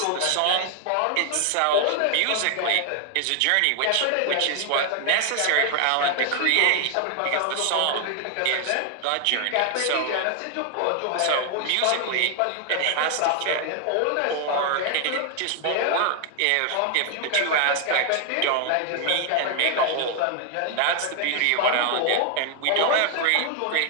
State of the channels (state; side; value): different; both; correlation 0.00